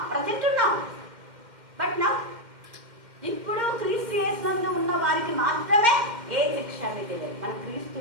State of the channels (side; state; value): left; late; 2.1 ms